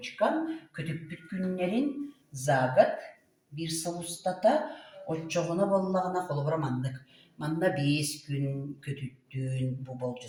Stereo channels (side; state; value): both; identical; correlation 1.00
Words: көтүппүт күннерин за год бир сыл устата отчогуна боллагына колобура манна 5 күн көтүттүн бу